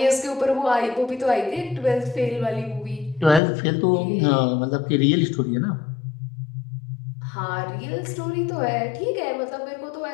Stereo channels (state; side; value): drops out; right; at 3.4 s